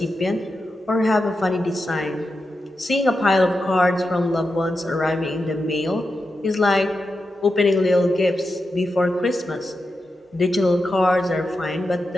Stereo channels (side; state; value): both; normal; correlation 0.89